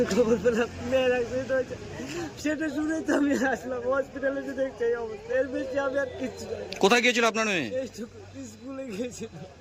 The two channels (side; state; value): both; identical; correlation 1.00